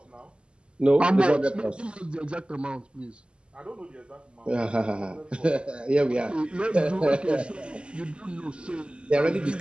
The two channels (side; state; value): left; late; 0.052 ms